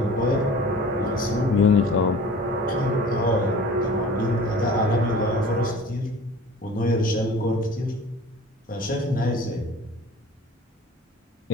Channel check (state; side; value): normal; both; correlation 0.43